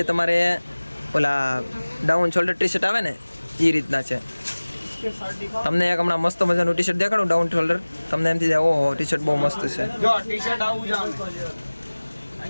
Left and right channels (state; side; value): inverted; both; correlation -1.00